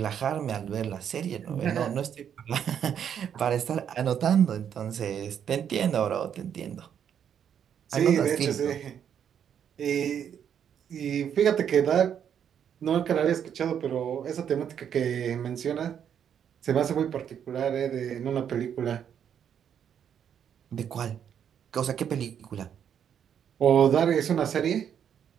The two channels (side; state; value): left; quieter; 8.6 dB